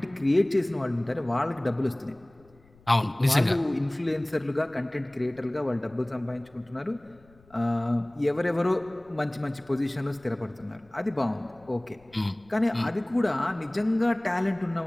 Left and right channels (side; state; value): left; noise; rumble, 29 dB below the sound